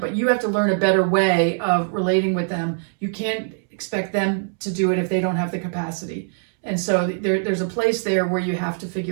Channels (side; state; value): left; silent; 64 dB below the other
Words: you have to learn a better way of relating with them. You can't expect them to do it if they don't have the capacity. And so there's a place there where you have to